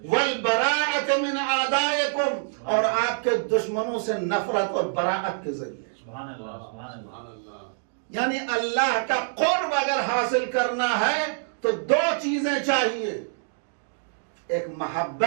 والبراءۃ من اعدائکم، اور آپ کے دشمنوں سے نفرت اور براءت کے ذریعے. سبحان اللہ، سبحان اللہ. یعنی اللہ کا قرب اگر حاصل کرنا ہے تو 2 چیزیں چاہیے. ایک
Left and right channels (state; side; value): silent; left; digital silence